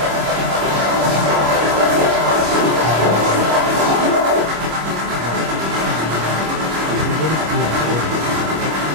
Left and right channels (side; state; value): left; late; 25 ms